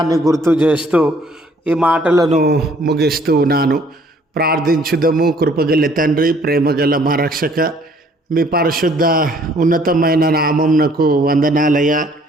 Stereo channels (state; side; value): normal; both; correlation 0.60